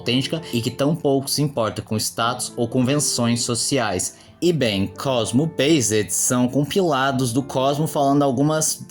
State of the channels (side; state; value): both; identical; correlation 1.00